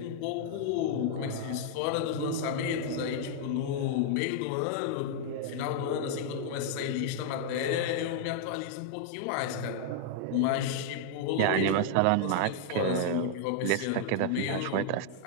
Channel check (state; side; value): different; both; correlation -0.01